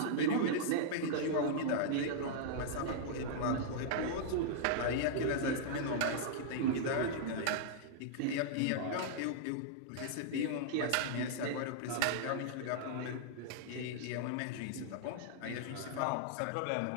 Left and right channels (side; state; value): both; different; correlation -0.02